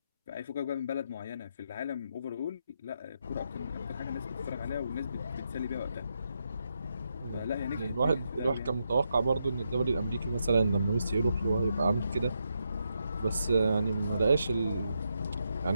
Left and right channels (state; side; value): inverted; both; correlation -0.83